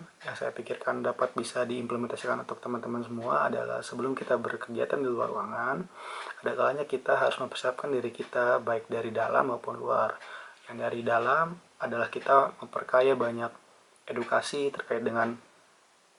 yang saya pikirkan dapat bisa diimplementasikan untuk teman-teman semua adalah sebelum kita berkegiatan di luar ruangan, ada kalanya kita harus mempersiapkan diri kita baik dari dalam maupun luar. Yang dari dalam adalah kita memperkaya banyak edukasi terkait dengan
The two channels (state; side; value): identical; both; correlation 1.00